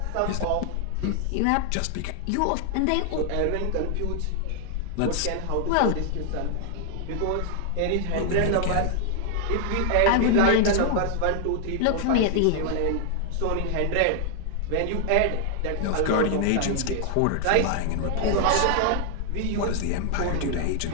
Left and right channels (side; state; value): both; different; correlation 0.00